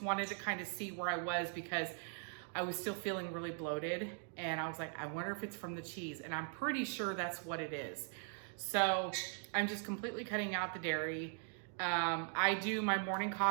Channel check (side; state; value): left; silent; 51 dB below the other